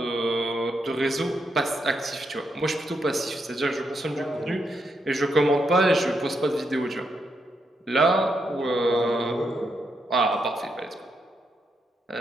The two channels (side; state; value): both; normal; correlation 0.81